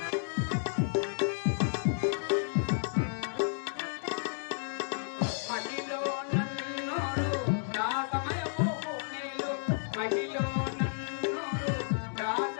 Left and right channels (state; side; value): silent; right; digital silence